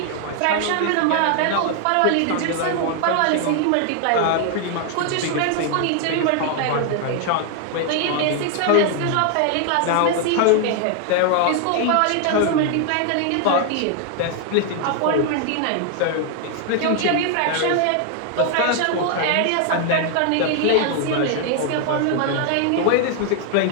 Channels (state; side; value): different; both; correlation 0.00